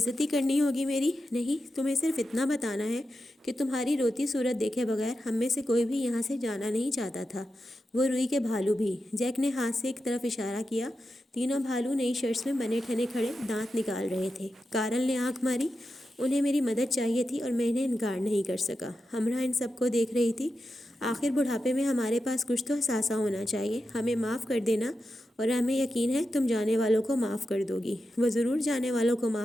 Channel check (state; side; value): normal; both; correlation 0.90